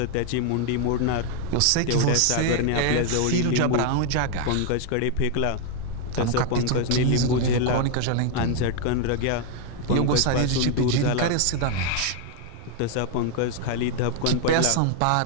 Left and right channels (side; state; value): both; different; correlation 0.00